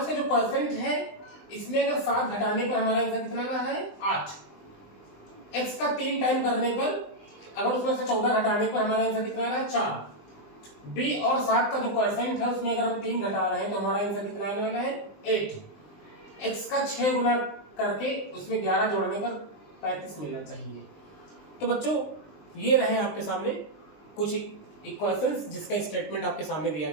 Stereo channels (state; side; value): late; right; 20 ms